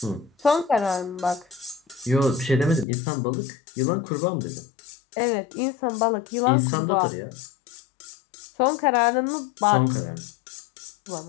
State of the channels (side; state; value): right; drops out; at 2.9 s